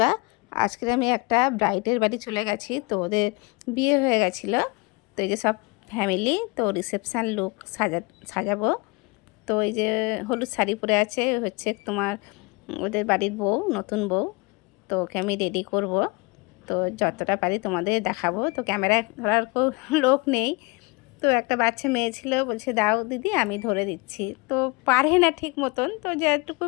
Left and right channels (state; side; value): quieter; right; 27.5 dB